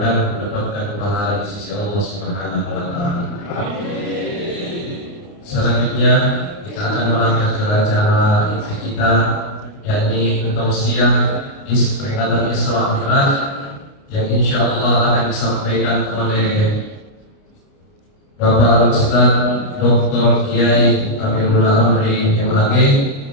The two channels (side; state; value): right; late; 29 ms